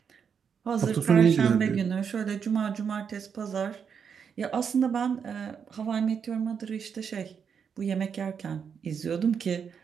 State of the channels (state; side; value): quieter; left; 6.9 dB